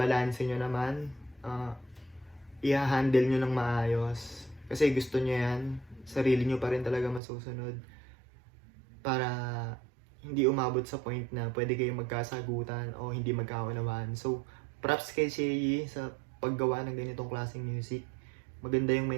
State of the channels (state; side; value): drops out; left; at 7.2 s